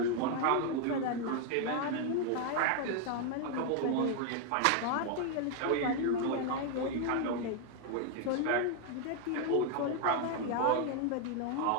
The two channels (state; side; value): different; both; correlation 0.00